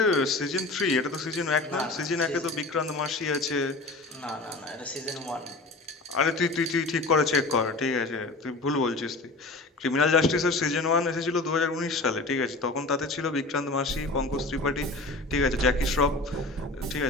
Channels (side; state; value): right; quieter; 3.1 dB